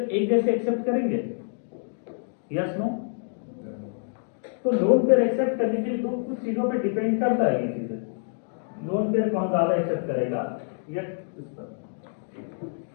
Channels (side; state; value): right; silent; digital silence